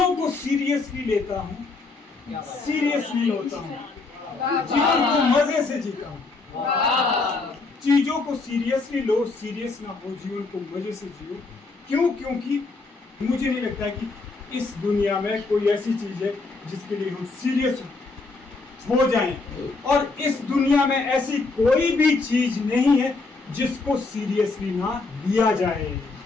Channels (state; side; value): quieter; right; 3.8 dB